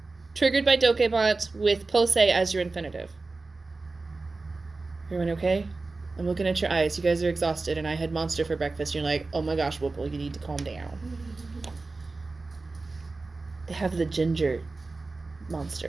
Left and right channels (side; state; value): left; quieter; 3.6 dB